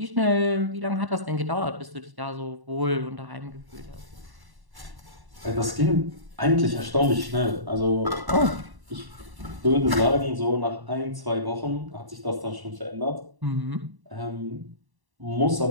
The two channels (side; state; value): left; late; 1.1 ms